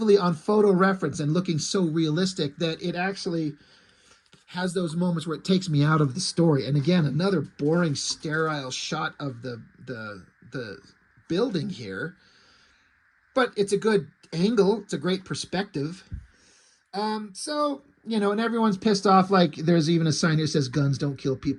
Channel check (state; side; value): identical; both; correlation 1.00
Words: on photo reference and looking so realistic that it actually has those moments where it takes me out of the story. And again, another boring, sterile shot of the building here. But it's a good angle. It's a great perspective. So, you know, and everyone's pissed off. Like, there's even a sign here that says guns don't kill